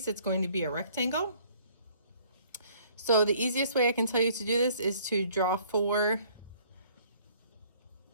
it's going to be a rectangle. So the easiest way I can tell you to do this is to draw 4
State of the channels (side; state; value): both; inverted; correlation -0.58